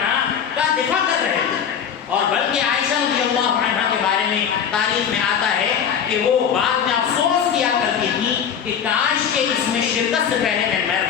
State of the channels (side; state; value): right; quieter; 8.0 dB